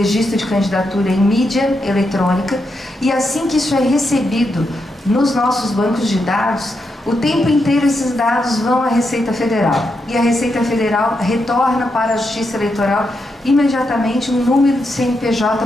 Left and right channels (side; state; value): both; normal; correlation 0.83